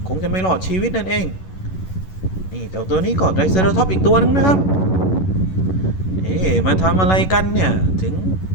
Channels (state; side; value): late; right; 11 ms